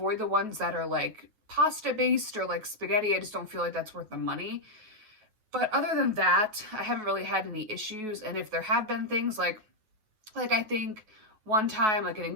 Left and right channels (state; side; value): late; left; 9.3 ms